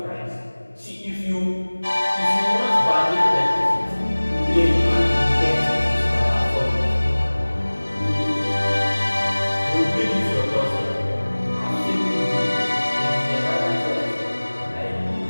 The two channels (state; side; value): inverted; both; correlation -1.00